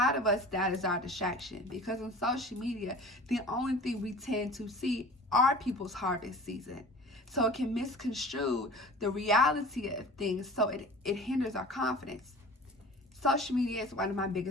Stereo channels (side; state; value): both; normal; correlation 0.41